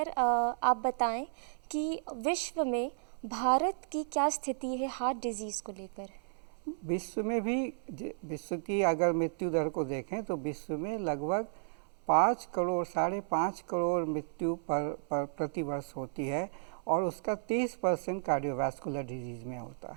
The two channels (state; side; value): silent; left; 55 dB below the other